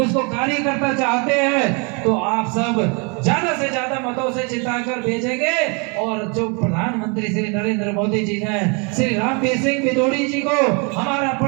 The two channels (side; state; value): left; quieter; 33.3 dB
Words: कार्यकर्ता चाहते हैं, तो आप सब ज्यादा से ज्यादा मतों से जिताकर भेजेंगे। और जो प्रधानमंत्री श्री नरेंद्र मोदी जी ने श्री रामवीर सिंह भिदोड़ी जी को हमारा